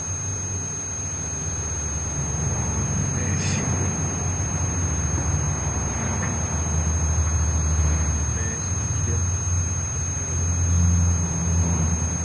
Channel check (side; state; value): both; identical; correlation 1.00